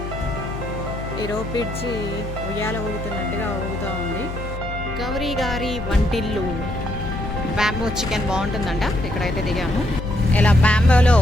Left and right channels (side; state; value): left; noise; hum, 8 dB below the sound